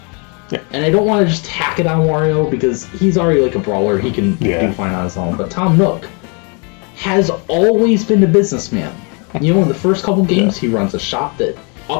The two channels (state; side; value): quieter; right; 34.7 dB